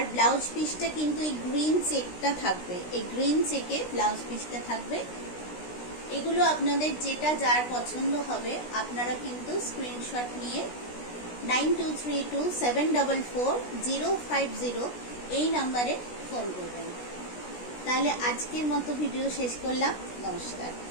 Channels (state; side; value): late; right; 16 ms